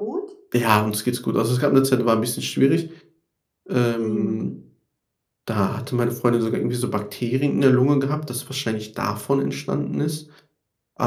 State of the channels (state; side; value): identical; both; correlation 1.00